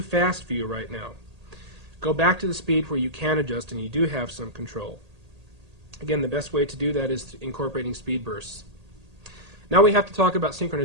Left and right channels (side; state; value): left; late; 1.8 ms